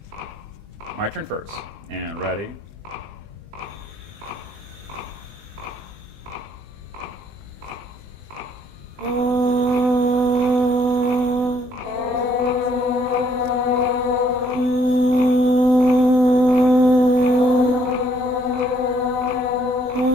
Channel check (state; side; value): late; left; 20 ms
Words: My turn first. And ready.